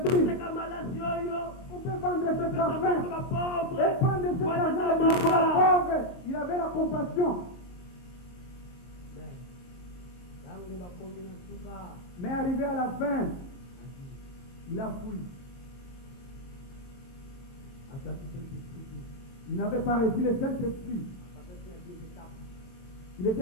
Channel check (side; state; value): right; late; 22 ms